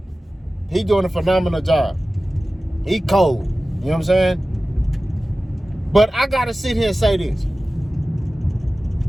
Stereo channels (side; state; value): both; normal; correlation 0.96